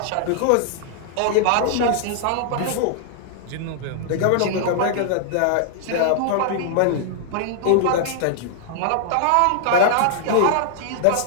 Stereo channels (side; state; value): both; different; correlation -0.01